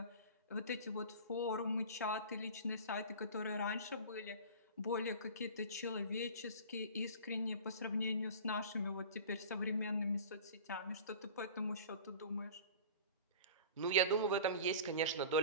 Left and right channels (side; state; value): both; inverted; correlation -0.38